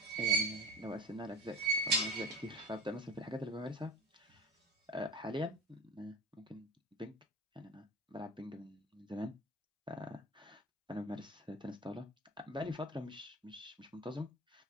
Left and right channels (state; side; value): normal; both; correlation 0.31